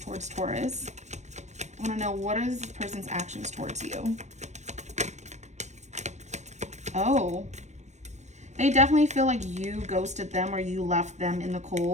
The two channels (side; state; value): left; late; 0.34 ms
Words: Taurus? I want to know, what are this person's actions towards you? Oh, they definitely feel like you ghosted them or you left them in the